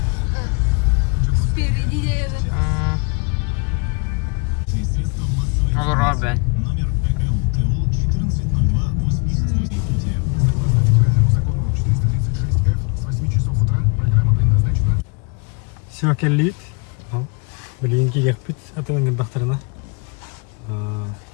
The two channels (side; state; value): right; quieter; 34.5 dB